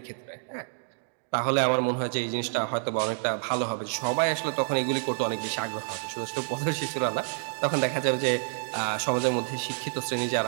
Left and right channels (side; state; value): left; silent; digital silence